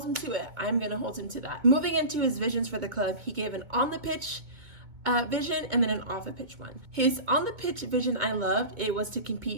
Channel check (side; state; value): left; late; 2.2 ms